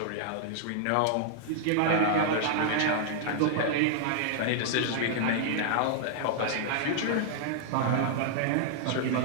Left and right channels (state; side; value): different; both; correlation -0.01